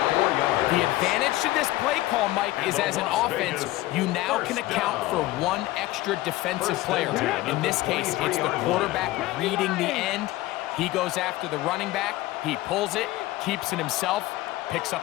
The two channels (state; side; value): quieter; right; 17.5 dB